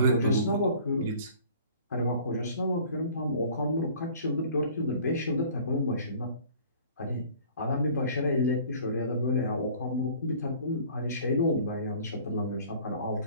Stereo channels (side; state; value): both; inverted; correlation -0.50